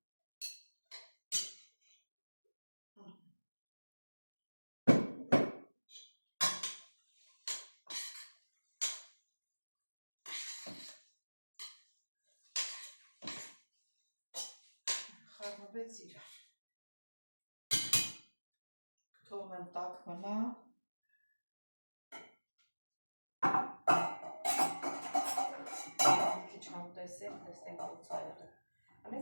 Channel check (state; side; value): inverted; both; correlation -1.00